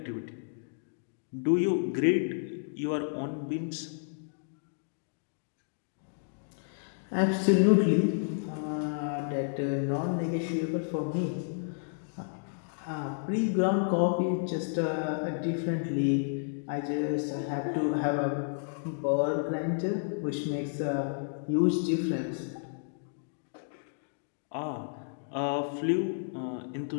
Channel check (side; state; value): right; silent; digital silence